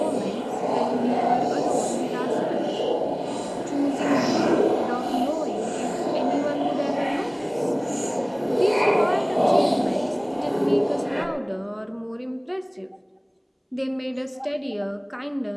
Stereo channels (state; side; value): identical; both; correlation 1.00